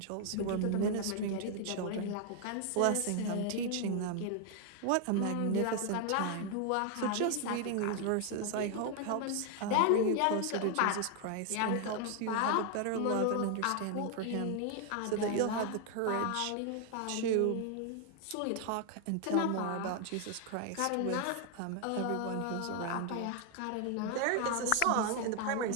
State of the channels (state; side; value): different; both; correlation 0.00